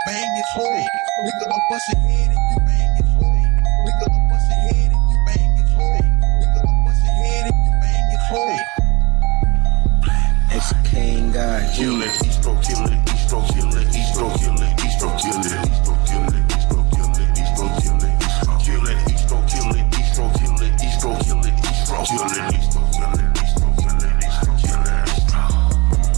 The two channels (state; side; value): quieter; left; 24.9 dB